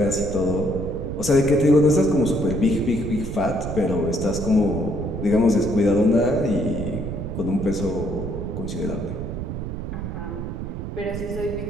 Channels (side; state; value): right; noise; rumble, 6 dB below the sound